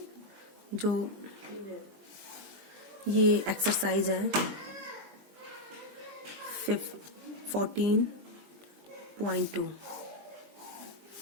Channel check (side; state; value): left; late; 20 ms